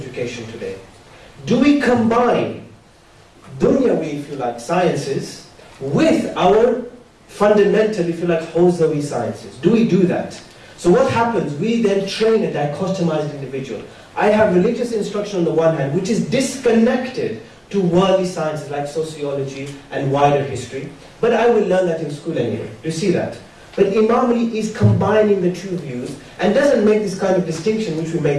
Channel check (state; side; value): identical; both; correlation 1.00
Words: today? Do we combine dunyawi, if you like, sciences with our fundamental, if you like, hawzawi sciences? Do we do that? So what happens? We then train a dichotomized individual. I have religious instruction on the one hand, which is disconnected to worldly sciences like sociology and wider history, but I will learn that in school anyway. Do you see that? But Imam Ali is combining the two views and doesn't make this kind of distinction which we